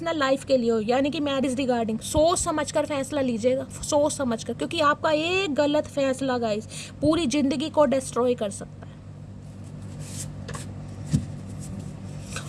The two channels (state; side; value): identical; both; correlation 1.00